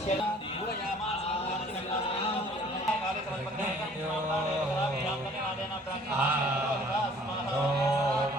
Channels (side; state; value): both; normal; correlation 0.54